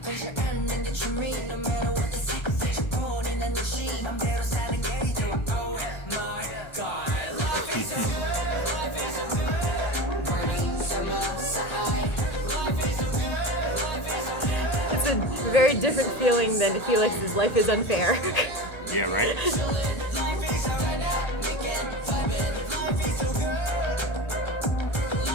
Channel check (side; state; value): right; late; 1.3 ms